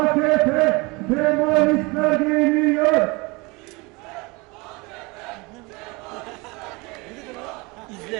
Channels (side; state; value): left; quieter; 26.2 dB